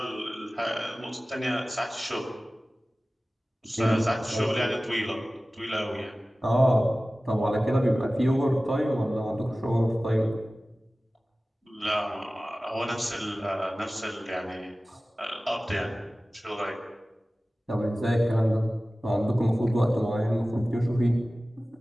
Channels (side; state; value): both; normal; correlation 0.97